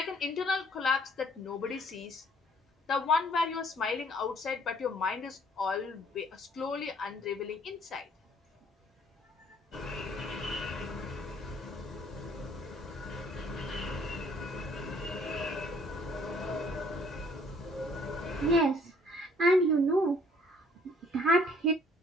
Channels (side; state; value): both; normal; correlation 0.60